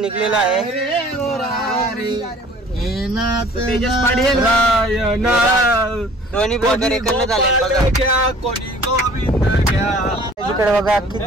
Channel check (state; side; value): normal; both; correlation 0.51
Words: आहे. दोन्ही ब्लॉगर एकत्र झाले बघा. इकडे बघा अख्खी